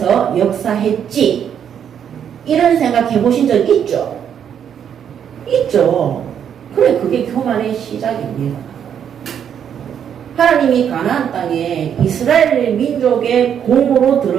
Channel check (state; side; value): quieter; left; 8.6 dB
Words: 역사했지 이런 생각 해보신 적 있죠? 있죠. 그래, 그게 교만의 시작입니다. 하나님이 가나안 땅에 이스라엘 민족의 공으로